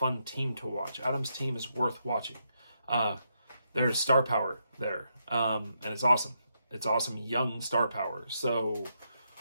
team to watch. Adam's team is worth watching. There's star power there, and it's awesome. It's awesome young star power. So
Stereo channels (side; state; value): both; inverted; correlation -0.80